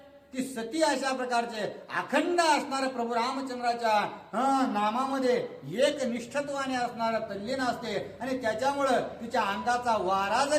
ती सती अशा प्रकारचे अखंड असणार प्रभू रामचंद्राच्या नामामध्ये एक निष्ठत्वाने असणार तल्लीन असते आणि त्याच्यामुळं तिच्या अंगाचा वारा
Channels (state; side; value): identical; both; correlation 1.00